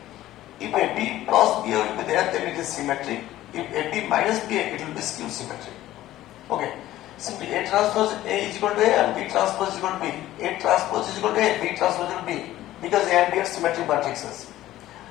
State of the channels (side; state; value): right; quieter; 14.7 dB